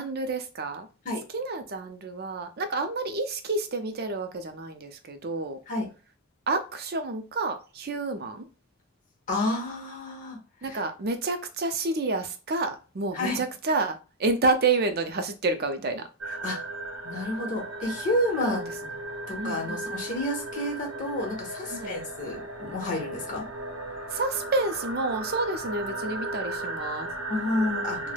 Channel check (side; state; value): both; normal; correlation -0.04